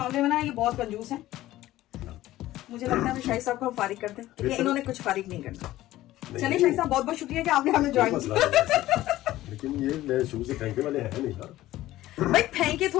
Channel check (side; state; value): right; quieter; 15.4 dB